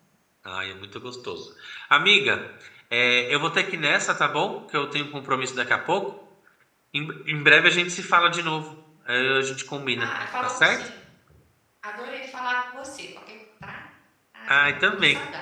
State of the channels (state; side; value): identical; both; correlation 1.00